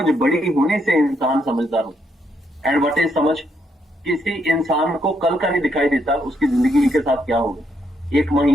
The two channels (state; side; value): normal; both; correlation 0.76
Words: बड़ी होने से इंसान समझदार होता। एंड व्हाट इज समझ? किसी इंसान को कल का नहीं दिखाई देता उसकी जिंदगी के साथ क्या होगा, एक